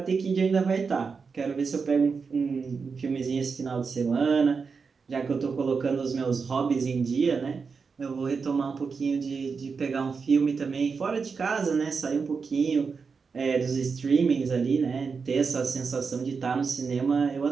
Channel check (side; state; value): left; quieter; 5.2 dB